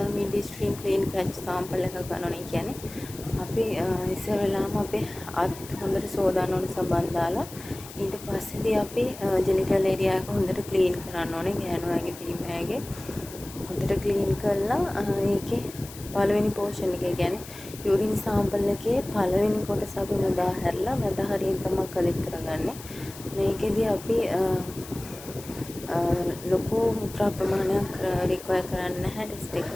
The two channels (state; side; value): noise; left; hiss, 16 dB below the sound